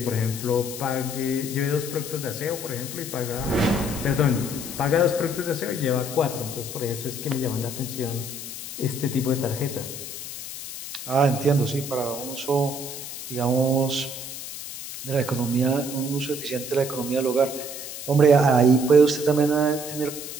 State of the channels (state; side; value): noise; left; hiss, 9 dB below the sound